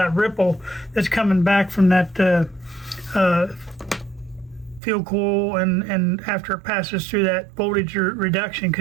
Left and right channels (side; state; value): left; drops out; at 4.8 s